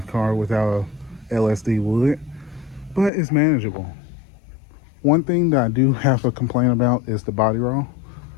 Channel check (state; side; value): drops out; right; at 3.1 s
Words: car without a LSD would, but it's manageable. One thing that I do have a complaint about is the body roll.